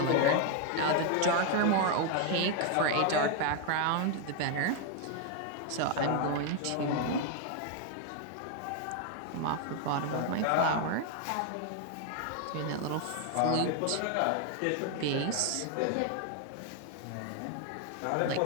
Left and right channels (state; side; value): different; both; correlation 0.00